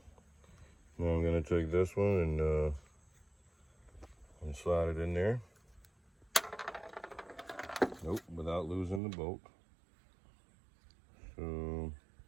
Now I'm gonna take this one and slide it in there. Nope, without losing the bolt. So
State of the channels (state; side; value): drops out; left; at 9.0 s